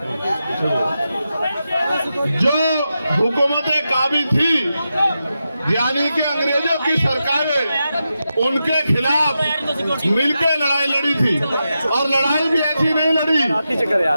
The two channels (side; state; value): both; inverted; correlation -0.89